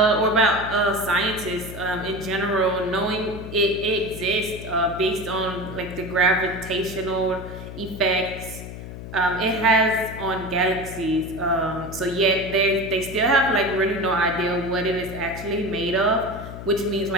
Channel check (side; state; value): left; noise; hum, 11 dB below the sound